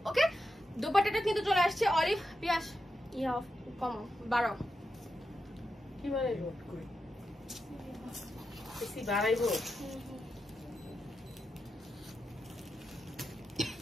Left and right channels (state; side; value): normal; both; correlation 0.88